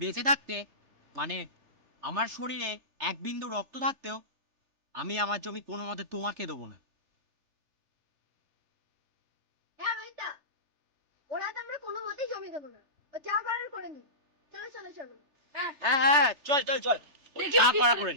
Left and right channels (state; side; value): late; left; 3.4 ms